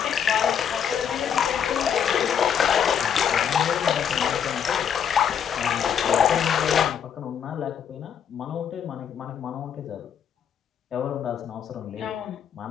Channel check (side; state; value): right; quieter; 8.1 dB